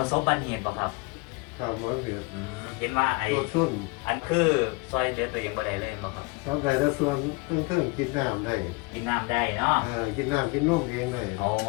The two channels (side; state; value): right; quieter; 26.2 dB